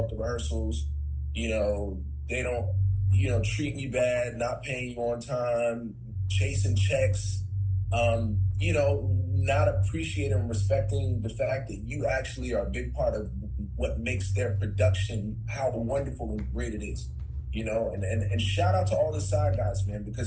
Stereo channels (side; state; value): both; identical; correlation 1.00